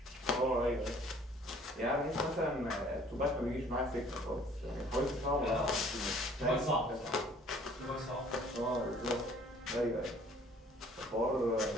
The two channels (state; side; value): normal; both; correlation 0.55